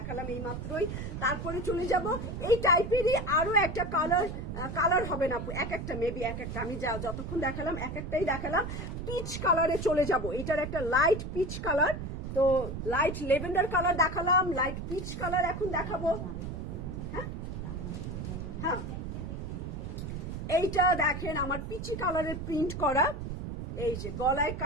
এই মাত্রই। তারপরে চলে যাব এই টাইপেরই আরো একটা কালার হবে না, এক একটা মেবি এক একটা, আমি যতক্ষণ দেখালাম এক একটাই দেখালাম। পিচ কালারে চলে যাব, এটার একটা লাইট পিচ কালার। তো লাইট লেভেন্ডার কালার দেখালাম, লাইট পিচ কালার এখন দেখাবো। হ্যাঁ হ্যাঁ, এইটা দেখেন আমার পিচি কালারের প্রিন্ট করা, এই যে গলায়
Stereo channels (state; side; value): noise; right; rumble, 6 dB below the sound